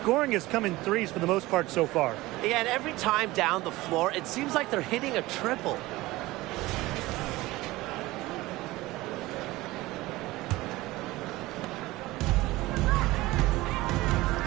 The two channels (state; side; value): quieter; left; 19.1 dB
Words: has come in threes for the most part so far. Yeah, and every time down the floor, it seems like they're hitting a triple.